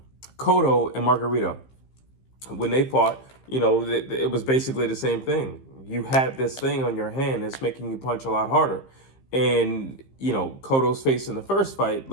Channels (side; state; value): right; late; 15 ms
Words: and Margarito. When they fought, you know, it was basically the same thing. You had this thing on your hand that's making you punch a lot harder. And, you know, Cotto's face in the first fight